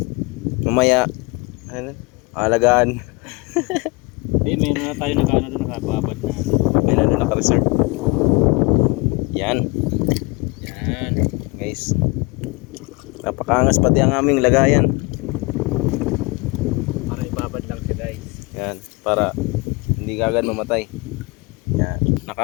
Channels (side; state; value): right; quieter; 27.2 dB